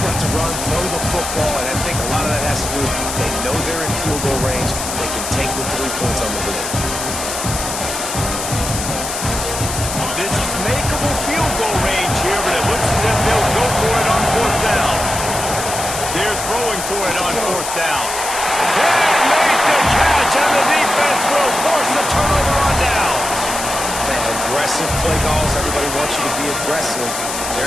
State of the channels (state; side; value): noise; left; hiss, 5 dB below the sound